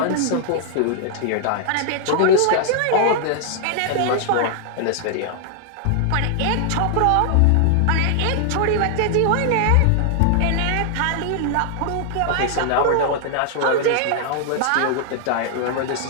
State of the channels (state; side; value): different; both; correlation 0.00